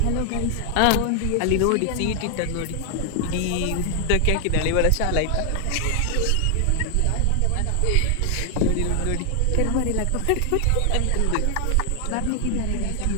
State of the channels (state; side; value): different; both; correlation 0.00